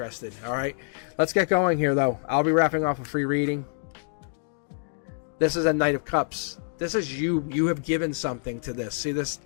All right, let's get going here, though. I'll be wrapping off a free reading. This is a Knight of Cups. This is you. You have given something to this. See this?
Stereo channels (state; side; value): silent; right; digital silence